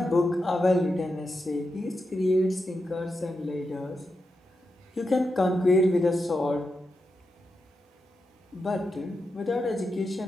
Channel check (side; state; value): both; normal; correlation 0.87